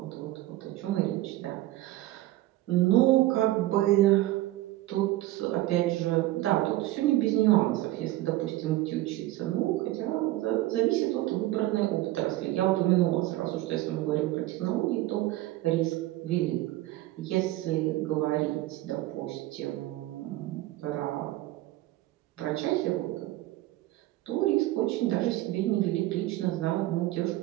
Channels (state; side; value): quieter; left; 16.5 dB